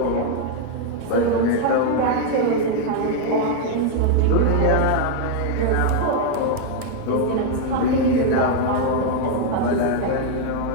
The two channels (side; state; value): both; different; correlation 0.00